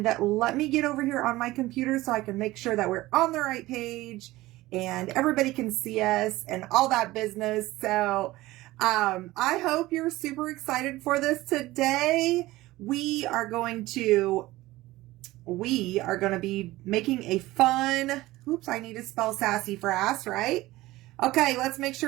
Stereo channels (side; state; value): left; quieter; 18.1 dB